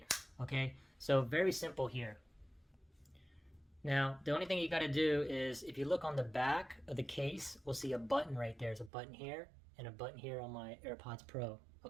Okay, so very simple here. Now, the only thing you got to do is, if you look on the back of the case, we'll see a button right there. There's a button here and a button here on my AirPods Pro.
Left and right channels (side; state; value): left; drops out; at 8.9 s